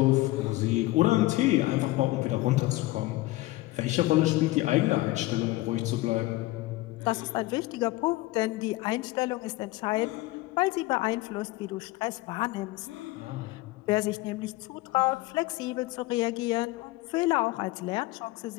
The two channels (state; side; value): quieter; right; 18.9 dB